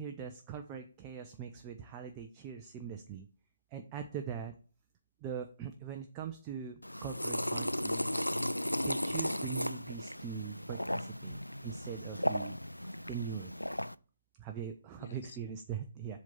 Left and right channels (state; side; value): inverted; both; correlation -0.75